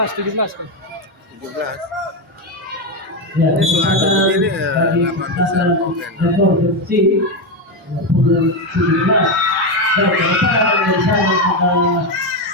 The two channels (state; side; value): normal; both; correlation 0.10